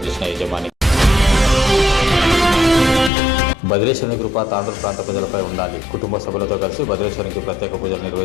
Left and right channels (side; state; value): right; drops out; at 3.1 s